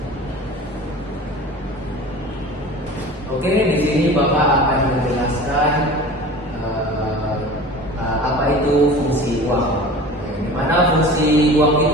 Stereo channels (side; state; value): both; normal; correlation 0.38